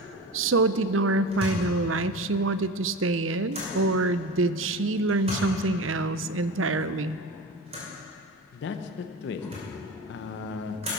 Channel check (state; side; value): normal; both; correlation 0.30